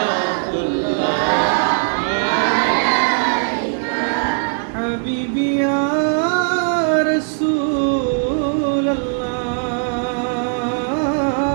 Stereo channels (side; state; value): left; silent; digital silence